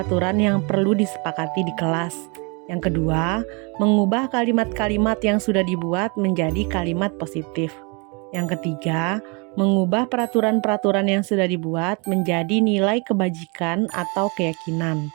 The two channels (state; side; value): quieter; left; 31.6 dB